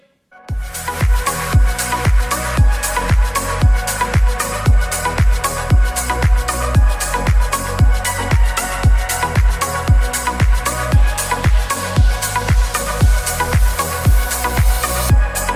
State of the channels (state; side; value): identical; both; correlation 1.00